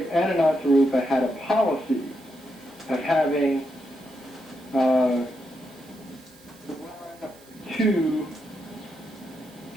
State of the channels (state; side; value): noise; right; hiss, 26 dB below the sound